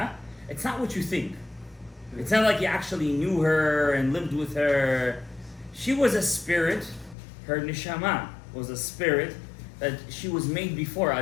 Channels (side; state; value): right; drops out; at 7.2 s